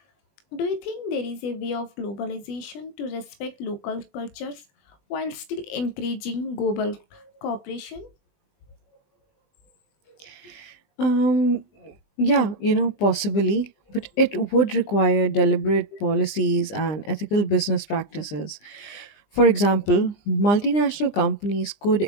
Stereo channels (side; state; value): right; late; 20 ms